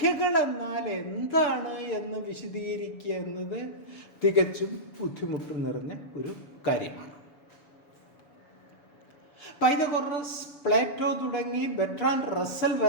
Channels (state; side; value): late; right; 7.0 ms